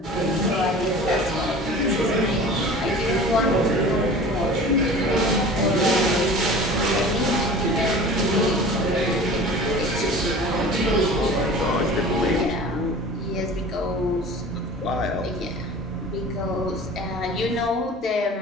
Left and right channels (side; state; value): both; normal; correlation 0.41